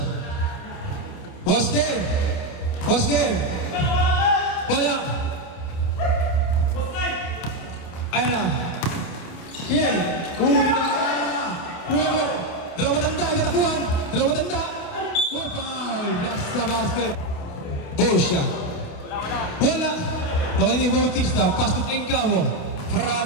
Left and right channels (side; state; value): right; late; 28 ms